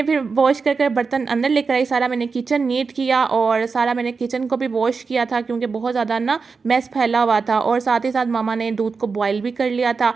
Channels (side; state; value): left; quieter; 4.9 dB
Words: फिर वॉश कर बर्तन अंदर लेकर आई, सारा मैंने किचन नीट किया और सारा मैंने किचन को भी वॉश किया था, क्योंकि बहुत ज़्यादा ना मैस फैला हुआ था। और साथ ही साथ मामा ने दूध को बॉईल भी कर लिया था।